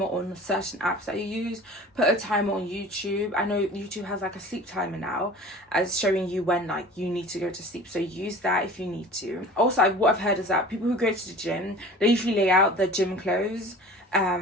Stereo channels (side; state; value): both; normal; correlation 0.41